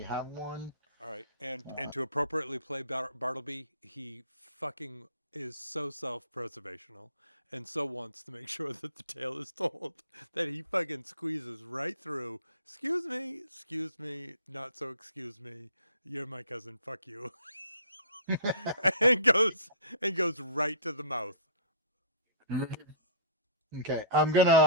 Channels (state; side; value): inverted; both; correlation -0.44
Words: have one. All right, and to appropriately play Bartleby, he fucking is so self-preservational and so wants to make sure that the tale is told that he fucking squeezes right through. Excuse me, not so excuse me. You're my cousin. Fuck you. and goes right to the mouth. Okay, I'm